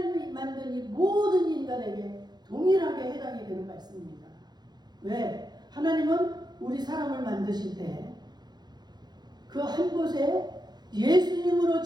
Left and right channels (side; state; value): left; late; 0.20 ms